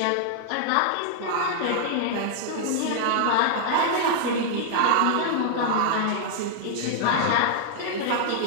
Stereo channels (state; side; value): different; both; correlation -0.01